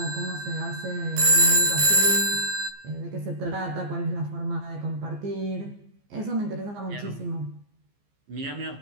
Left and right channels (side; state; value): left; late; 15 ms